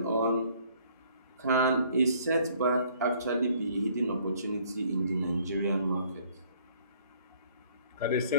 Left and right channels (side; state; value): both; inverted; correlation -0.60